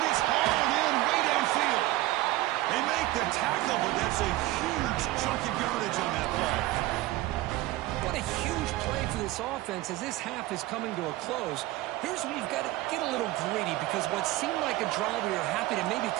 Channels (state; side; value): quieter; left; 17.5 dB